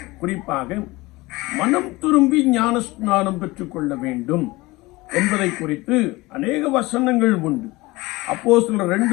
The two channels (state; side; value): quieter; right; 21.4 dB